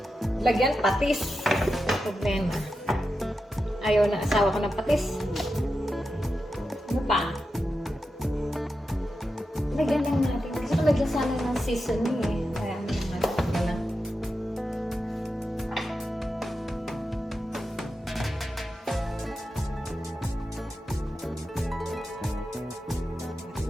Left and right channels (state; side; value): normal; both; correlation 0.89